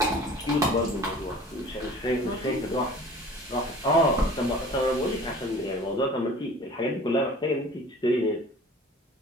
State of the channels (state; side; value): normal; both; correlation 0.45